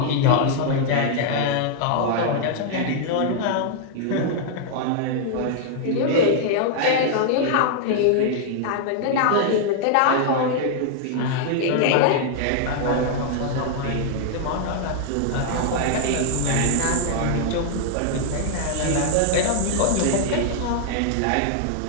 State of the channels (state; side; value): different; both; correlation -0.01